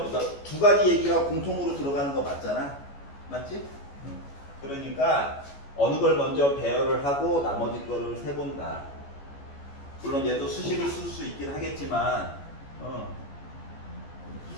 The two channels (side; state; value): right; late; 14 ms